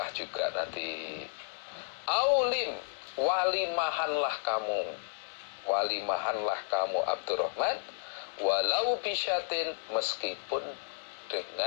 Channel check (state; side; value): silent; right; 56 dB below the other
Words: juga nanti. Aulim, walimahanlah kamu Abdurrahman, walau bisyatin, meskipun